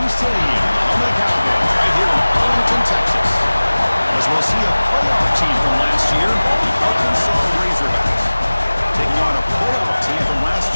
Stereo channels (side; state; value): both; inverted; correlation -1.00